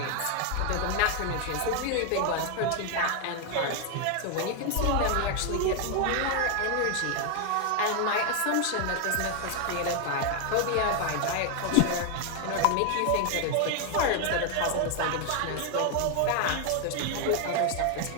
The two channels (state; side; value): different; both; correlation 0.01